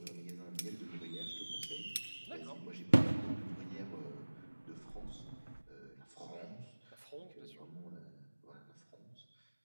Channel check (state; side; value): inverted; both; correlation -1.00